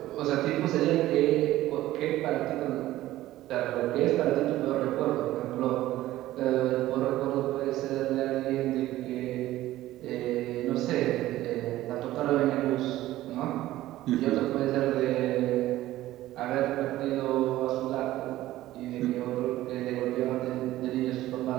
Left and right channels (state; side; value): quieter; left; 15.4 dB